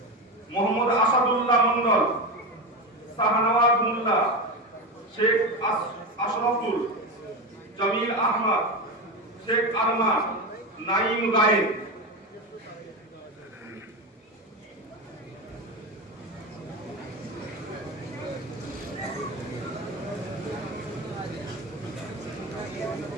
মোহাম্মদ আসাদুল্লাহ মন্ডল, শাহনওয়াজ মোল্লা, শেখ আশরাফুল, জামিল আহমদ, শেখ আরমান, নাইম গায়েন।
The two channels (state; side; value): normal; both; correlation 0.19